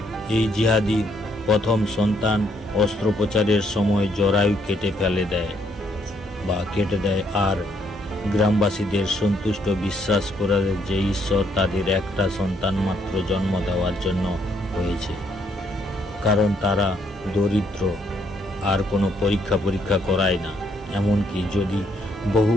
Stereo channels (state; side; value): normal; both; correlation 0.70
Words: এই জিহাদি প্রথম সন্তান অস্ত্রোপচারের সময় জরায়ু কেটে দেয়, আর গ্রামবাসীদের সন্তুষ্ট বিশ্বাস করে যে ঈশ্বর তাদের একটা সন্তান মাত্র জন্ম দেওয়ার জন্য হয়েছে, কারণ তারা দরিদ্র, আর কোনো পরীক্ষা করায় না। এমনকি যদি বহু